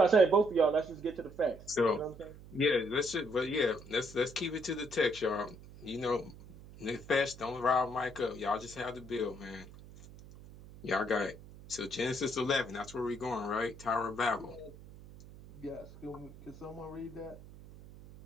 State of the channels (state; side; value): noise; right; hum, 18 dB below the sound